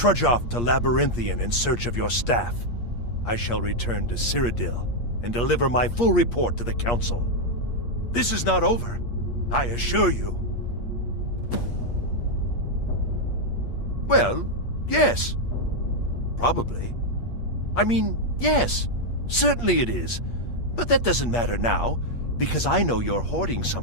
off to Labyrinthian in search of your staff. I shall return to Cyrodiil and deliver my full report to the Council. This is not over, I assure you. Well, yes. Probably. I mean, yes. Certainly it is. But that doesn't matter now, because I know you're hoarding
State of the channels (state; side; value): late; right; 8.5 ms